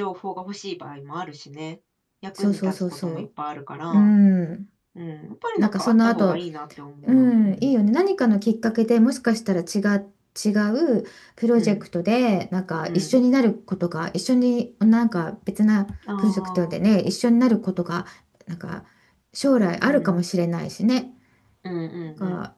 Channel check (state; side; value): identical; both; correlation 1.00